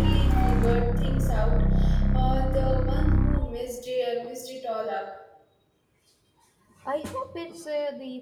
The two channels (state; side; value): identical; both; correlation 1.00